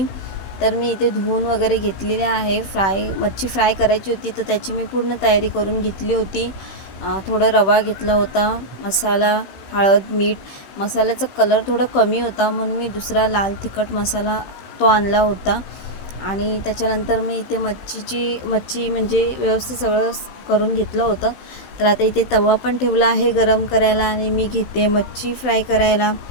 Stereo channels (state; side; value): late; right; 16 ms